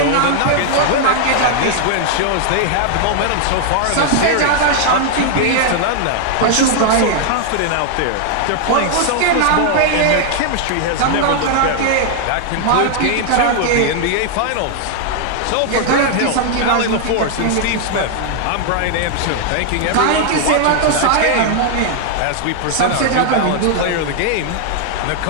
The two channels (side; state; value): both; different; correlation 0.00